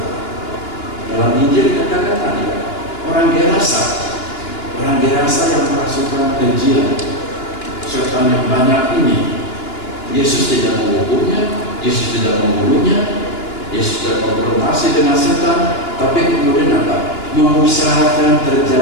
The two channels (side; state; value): right; late; 2.9 ms